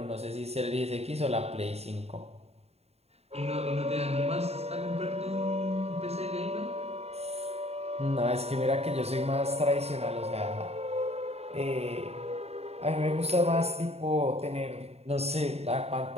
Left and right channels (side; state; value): left; late; 0.30 ms